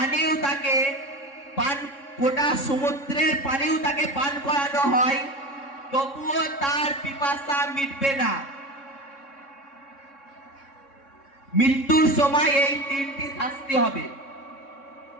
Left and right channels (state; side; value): late; right; 3.6 ms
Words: তাকে গোটা সমুদ্রের পানিও তাকে পান করানো হয়, তবুও তার পিপাসা মিটবে না। মৃত্যুর সময় এই 3টি শাস্তি হবে।